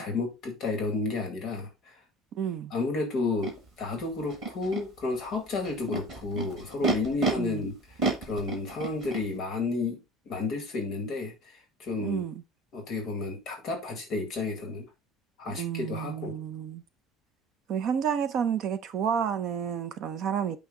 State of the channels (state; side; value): normal; both; correlation 0.40